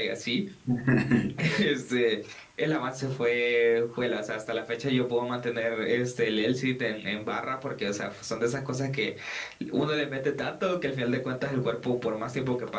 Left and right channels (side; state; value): both; identical; correlation 1.00